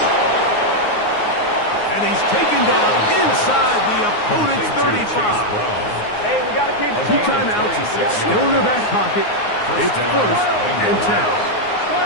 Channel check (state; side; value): late; right; 9.6 ms